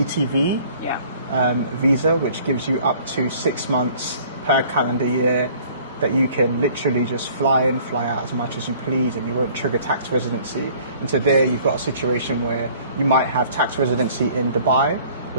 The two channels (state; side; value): inverted; both; correlation -0.54